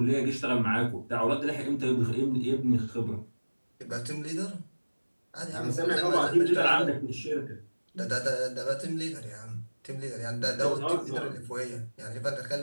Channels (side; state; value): both; inverted; correlation -1.00